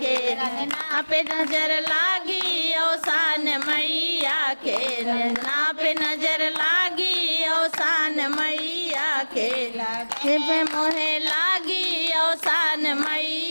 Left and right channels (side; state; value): both; inverted; correlation -1.00